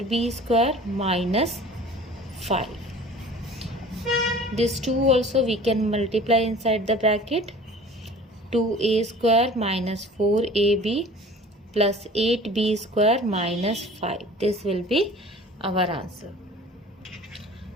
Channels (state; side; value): normal; both; correlation 0.44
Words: square minus 5. This 2 also we can multiply inside the bracket, 2a square minus 4ab plus 8b square minus 5. This will be our answer.